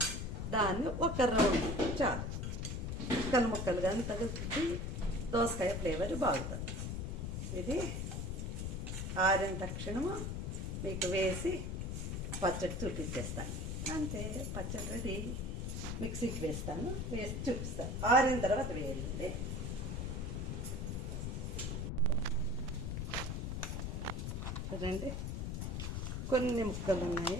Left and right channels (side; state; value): left; noise; rumble, 2 dB below the sound